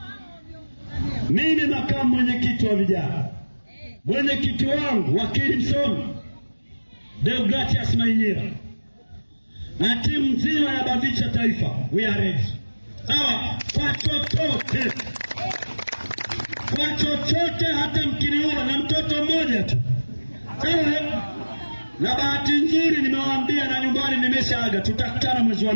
mimi makamu mwenyekiti wa vijana, mwenyekiti wangu wakili msomi Deogratias Mainyira na timu nzima ya BAVICHA taifa, we are ready. Sawa, kwa chochote, hata mkiniua na mtoto mmoja tu. Sawa, na bahati nzuri nimewaambia na nyumbani nimeshaaga, tutakutana mwezi wa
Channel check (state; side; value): inverted; both; correlation -1.00